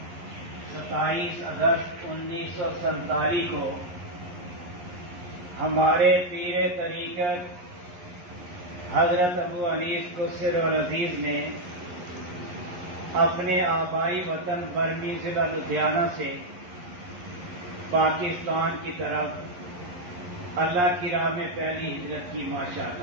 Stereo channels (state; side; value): late; left; 11 ms